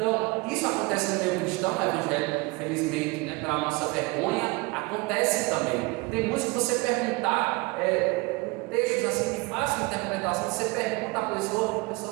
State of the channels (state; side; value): quieter; left; 25.2 dB